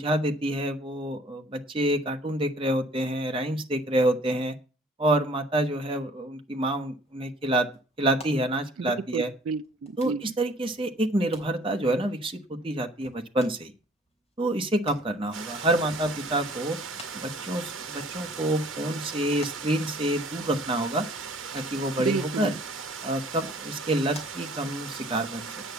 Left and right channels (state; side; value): normal; both; correlation 0.54